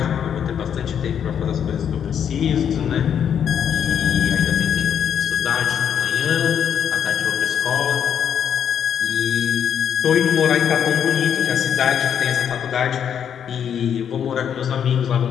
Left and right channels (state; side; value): quieter; right; 8.5 dB